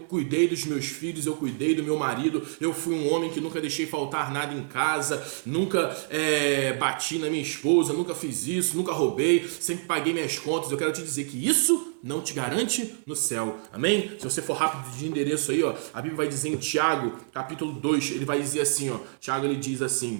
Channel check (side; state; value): left; silent; 60 dB below the other